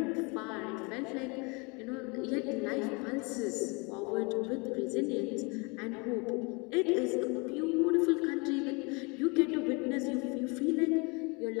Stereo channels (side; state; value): right; quieter; 29.7 dB